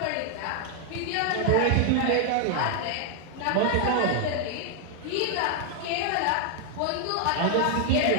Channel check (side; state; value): both; different; correlation 0.00